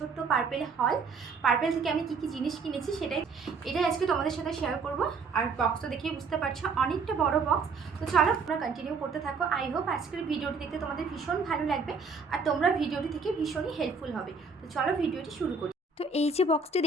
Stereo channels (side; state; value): left; quieter; 4.7 dB